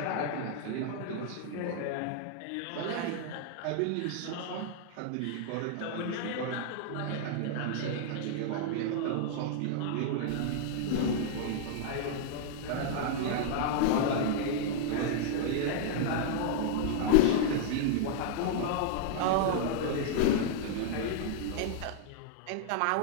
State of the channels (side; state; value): both; different; correlation -0.01